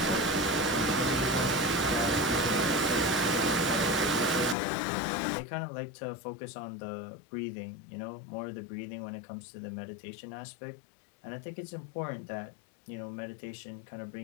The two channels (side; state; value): right; drops out; at 4.5 s